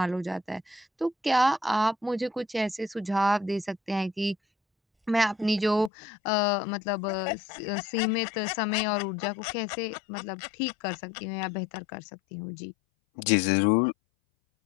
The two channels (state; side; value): drops out; right; at 5.9 s